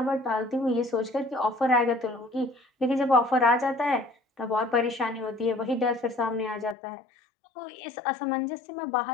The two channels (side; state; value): right; drops out; at 6.8 s